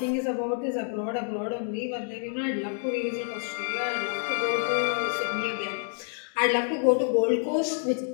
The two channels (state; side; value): silent; right; 59 dB below the other